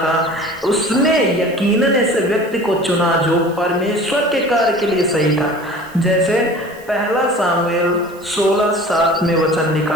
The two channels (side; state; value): right; noise; hiss, 25 dB below the sound